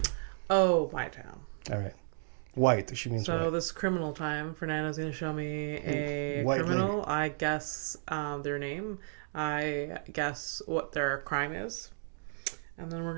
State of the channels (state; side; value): silent; left; digital silence